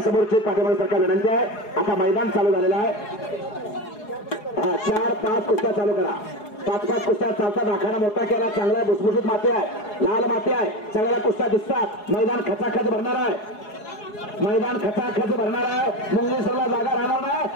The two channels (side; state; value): right; late; 4.8 ms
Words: समोरची पाठीमागे सरकार विनंती आहे. आता मैदान चालू झालेलं आहे. 4-5 कुस्त्या चालू करा. 5-5 कुस्त्या चालतात. आखाडा मोठा केला, चांगला भुसभुशीत माती आहे, लाल माती आहे, सगळ्या कुस्त्या दिसतात. मैदान खचाखच भरणार आहे. मैदान खचाखच भरणार आहे. मुंगेश्वरला जागा राहणार